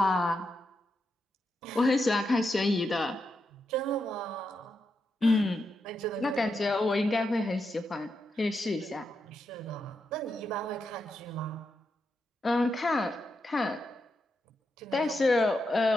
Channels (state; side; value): normal; both; correlation 0.85